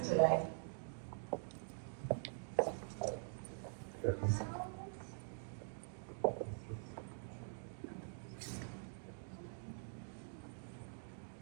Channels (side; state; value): left; silent; digital silence